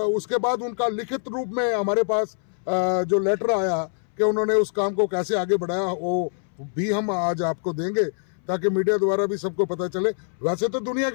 बाद उनका लिखित रूप में हमारे पास जो लेटर आया कि उन्होंने उस काम को कैसे आगे बढ़ाया, वो भी हम आज आपको देंगे ताकि मीडिया द्वारा भी सबको पता चले। वैसे तो दुनिया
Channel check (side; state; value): right; silent; 62 dB below the other